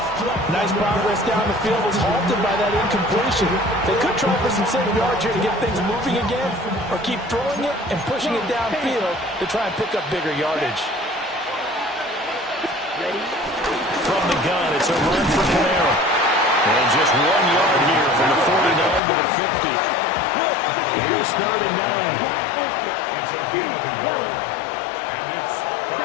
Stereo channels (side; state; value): right; drops out; at 19.0 s